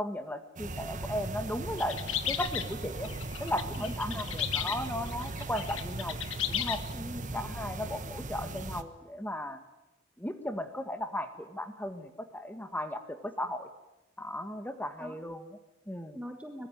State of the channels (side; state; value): both; normal; correlation 0.59